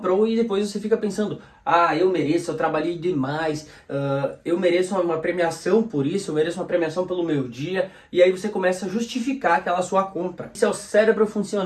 e depois você fica pensando, eu mereço, eu trabalhei demais, eu mereço uma premiação por isso, eu mereço uma premiação pelo meu dia, e aí você começa a justificar aquela sua compra. Isso é o cérebro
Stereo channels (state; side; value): identical; both; correlation 1.00